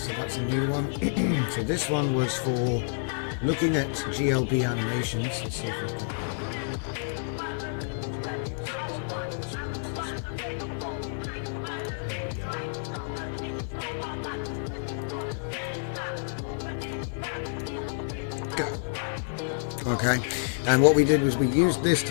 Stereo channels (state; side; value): silent; right; 59 dB below the other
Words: that's a new one. So this one was for looking at GLB animations. Let's see if we've got Okay, and what we did was we used this to